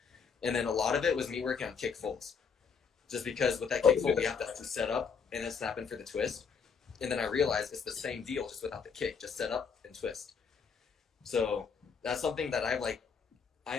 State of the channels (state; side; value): quieter; right; 6.0 dB